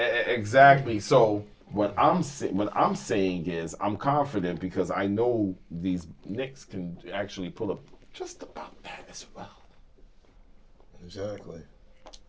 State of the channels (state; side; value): identical; both; correlation 1.00